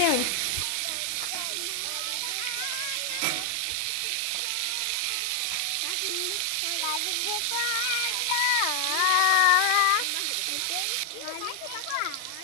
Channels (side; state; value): both; different; correlation 0.00